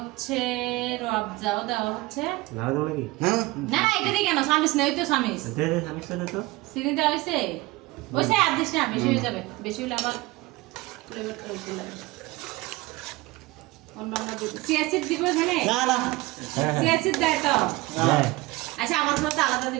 রবজাও দেওয়া হচ্ছে। লাগবে নাকি? হ্যাঁ না এটা দিয়ে কেন সামিস নেই তো সামিস দে দে আমি সাথে তো চিনি দেওয়া হয়েছে ওইসে আর দিস না, বেশি হয়ে যাবে, বেশি হলে আবার ফ্লেভারটা উঠে যাবে। অন্যান্য সিয়াসিড দিব এখানে, না না সিয়াসিড দেয় তো। হ্যাঁ আচ্ছা আমার মতো আলাদা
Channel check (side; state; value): left; quieter; 21.0 dB